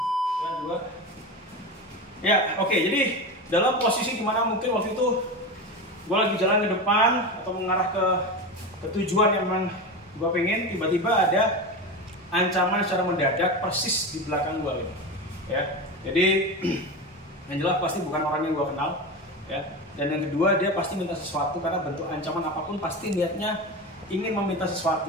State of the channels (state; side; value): normal; both; correlation 0.22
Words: Ya, oke. Jadi dalam posisi dimana mungkin waktu itu gue lagi jalan ke depan atau mengarah ke tujuan yang memang gue pengen, tiba-tiba ada ancaman secara mendadak persis di belakang gue gitu. Ya, jadi yang jelas pasti bukan orang yang gue kenal ya. Dan yang kedua, dia pasti minta sesuatu, karena bentuk ancaman apapun pasti niatnya ingin meminta